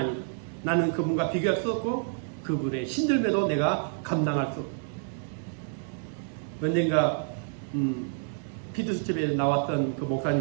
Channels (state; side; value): silent; left; 59 dB below the other